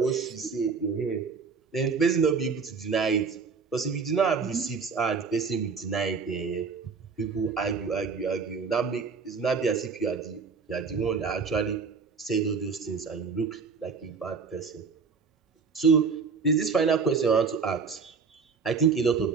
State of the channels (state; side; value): quieter; left; 5.2 dB